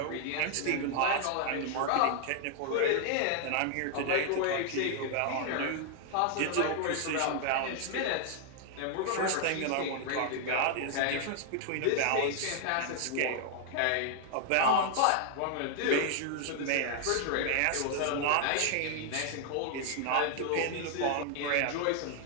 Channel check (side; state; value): both; different; correlation 0.00